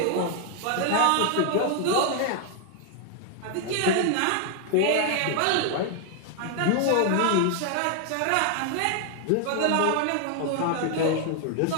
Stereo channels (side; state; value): both; different; correlation 0.00